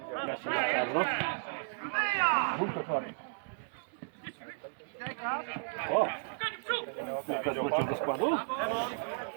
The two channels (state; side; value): silent; left; digital silence